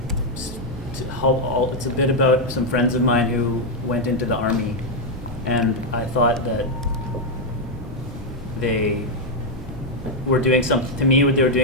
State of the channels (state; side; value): normal; both; correlation 0.01